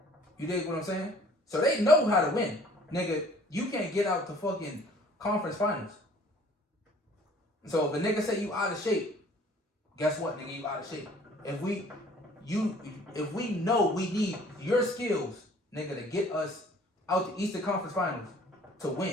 You dig what I'm saying? So they know how to win. Nigga, you can't get out the fucking conference finals. So if a nigga say you out of shape, guess what, nigga, you out of shape. If we know we need your skills, nigga, to get us out the Eastern Conference Finals to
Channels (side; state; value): both; normal; correlation 0.54